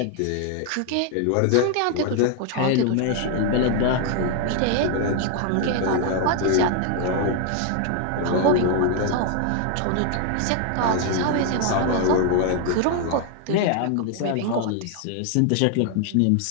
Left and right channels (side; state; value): both; different; correlation 0.00